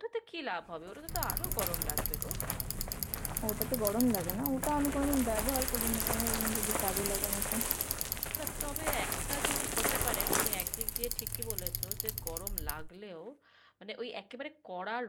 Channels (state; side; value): identical; both; correlation 1.00